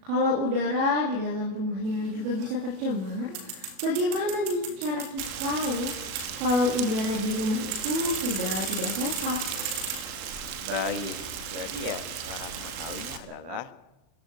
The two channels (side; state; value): left; late; 37 ms